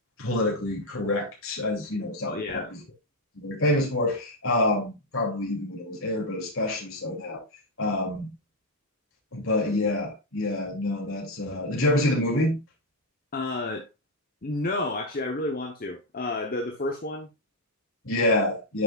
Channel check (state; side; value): normal; both; correlation 0.02